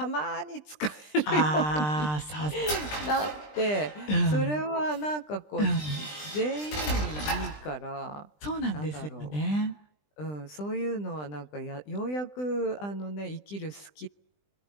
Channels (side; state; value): right; late; 20 ms